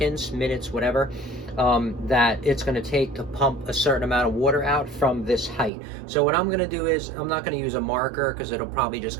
minutes, whatever, that it's going to take to pump a certain amount of water out from this height. So what I'm going to do is, I'm not going to use a marker because it'll probably just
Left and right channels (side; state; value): left; drops out; at 5.7 s